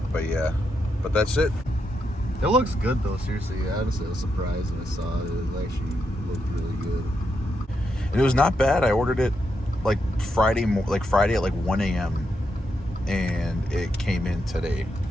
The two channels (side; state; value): both; normal; correlation 0.82